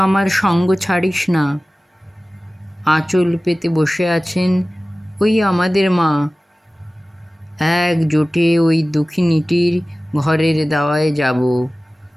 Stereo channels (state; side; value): normal; both; correlation 0.97